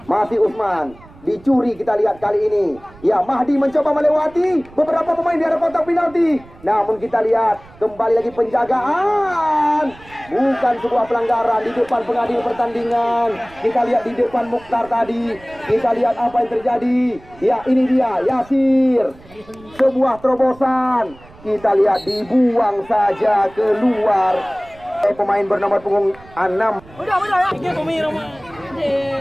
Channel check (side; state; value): right; noise; rumble, 23 dB below the sound